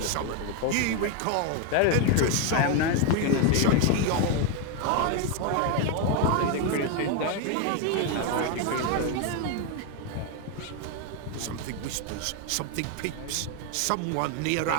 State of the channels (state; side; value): different; both; correlation 0.01